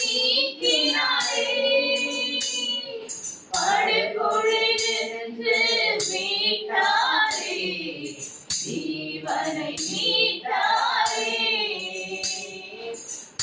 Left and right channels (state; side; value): identical; both; correlation 1.00